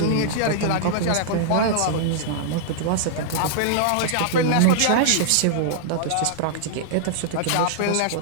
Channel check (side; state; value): both; different; correlation -0.02